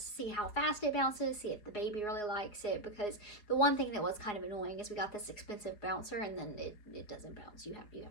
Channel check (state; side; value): late; right; 4.8 ms